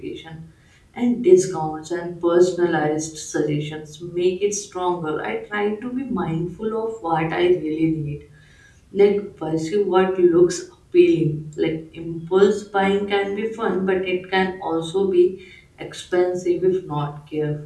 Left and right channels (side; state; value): both; identical; correlation 1.00